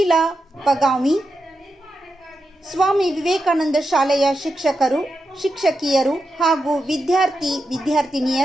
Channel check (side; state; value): both; normal; correlation 0.88